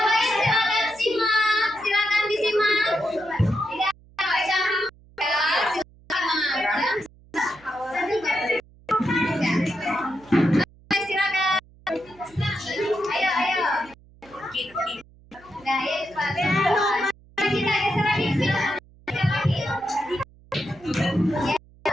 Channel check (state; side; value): noise; right; hum, 26 dB below the sound